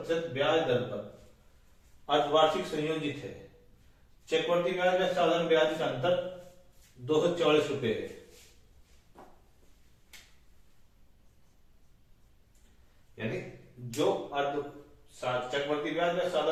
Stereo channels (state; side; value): identical; both; correlation 1.00